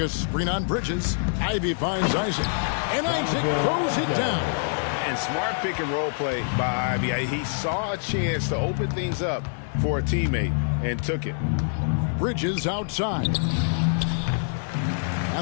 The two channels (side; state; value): right; silent; digital silence